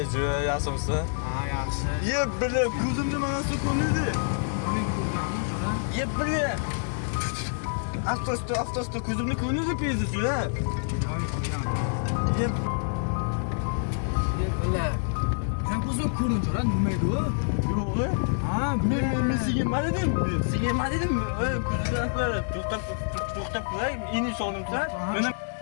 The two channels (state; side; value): silent; right; digital silence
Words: juda yaxshimsan. Yaxshi. Yeb bilib, ko'zimni mana shu ko'rindi. Men ko'rganman juda. Yeb bilib. Avtosta ko'zimni ko'rindi pezi juda. Yo'q, ko'rgan. Yeb Bular. Men ko'zim ko'rincha, nima edi u? yo'q. Ha, Men sigirma dedim. Sigirma dedim. Ko'zimni aqbal. To'xtab qo'y. Ini solimsan.